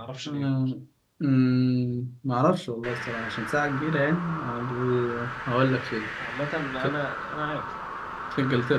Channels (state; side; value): identical; both; correlation 1.00